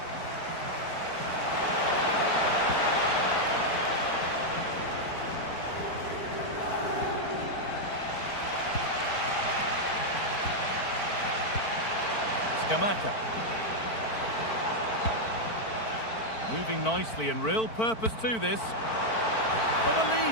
Scamacca. Moving nicely and real purpose to this. For the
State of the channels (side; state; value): right; late; 4.5 ms